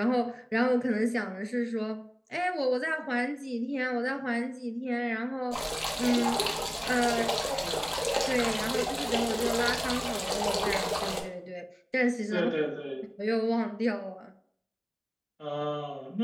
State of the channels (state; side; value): identical; both; correlation 1.00